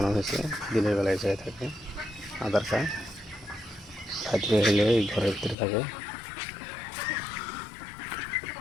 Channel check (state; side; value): drops out; right; at 5.6 s